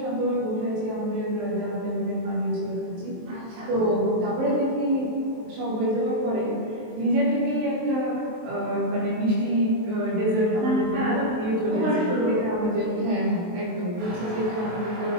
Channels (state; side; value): late; left; 23 ms